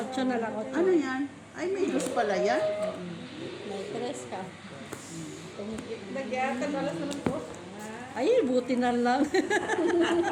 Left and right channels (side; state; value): both; identical; correlation 1.00